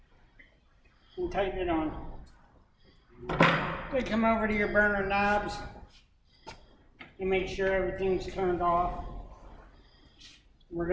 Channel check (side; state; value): both; identical; correlation 1.00